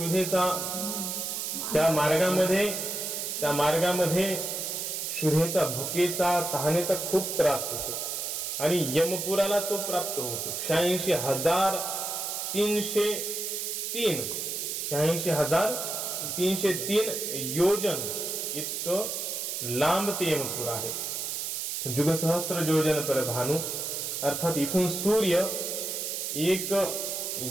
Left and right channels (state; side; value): noise; right; hiss, 3 dB below the sound